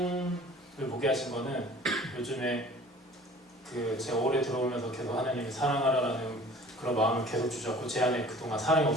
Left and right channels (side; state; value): both; normal; correlation 0.48